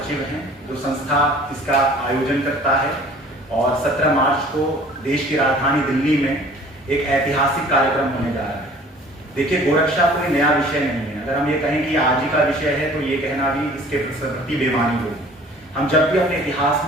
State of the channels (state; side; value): normal; both; correlation 0.50